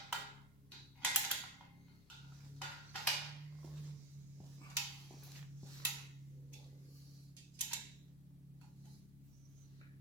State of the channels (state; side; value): normal; both; correlation 0.13